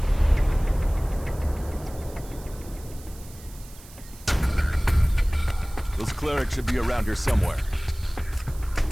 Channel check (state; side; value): noise; right; hiss, 21 dB below the sound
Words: Those clerics should be around here somewhere.